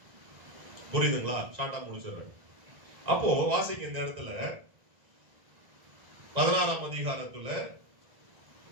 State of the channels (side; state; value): left; late; 1.9 ms